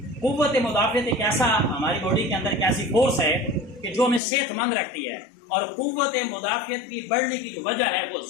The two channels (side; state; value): right; drops out; at 4.2 s